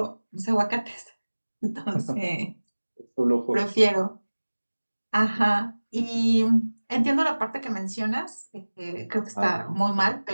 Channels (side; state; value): both; inverted; correlation -1.00